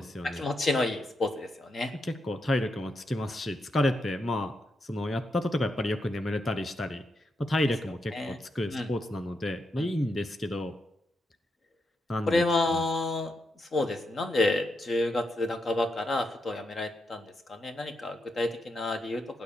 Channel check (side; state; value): both; normal; correlation 0.83